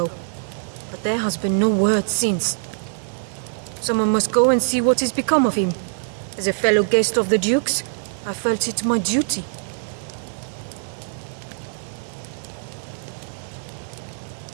but there has been no word since. Someone must go and see what has become of him. As a fellow guest of the Duke's, I felt it my duty.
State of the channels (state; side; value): silent; left; 56 dB below the other